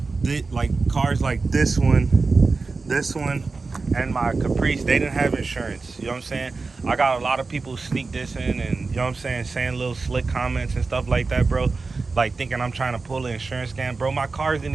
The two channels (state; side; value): quieter; left; 4.0 dB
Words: cars like this one, and my Caprice, they didn't have insurance. You know what I'm saying? I got a lot of people sneak dissing and, you know what I'm saying little slick comments and stuff like that, bro. Like thinking I'm trying to pull an insurance scam. Bro, my cars didn't